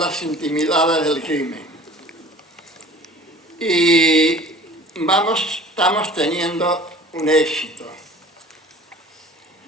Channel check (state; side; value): normal; both; correlation 0.46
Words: intimidades del crimen. Y estamos teniendo un éxito.